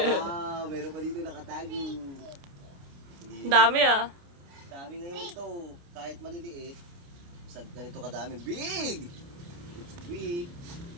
Wow, meron pa dito nakatago. Ang dami ah. Dami ngayon ito. Kahit maliliit. Sa ganito kadami. Big! It's big.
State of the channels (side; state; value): left; late; 29 ms